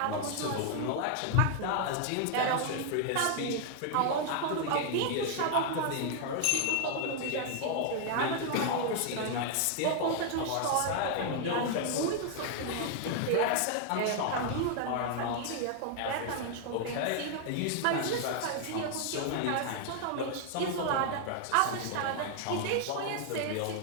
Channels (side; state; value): both; different; correlation 0.00